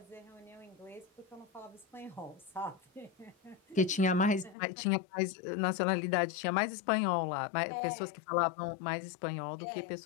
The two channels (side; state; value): right; drops out; at 4.5 s